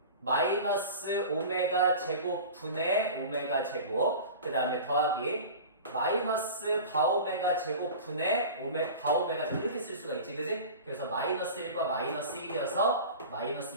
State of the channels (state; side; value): inverted; both; correlation -0.35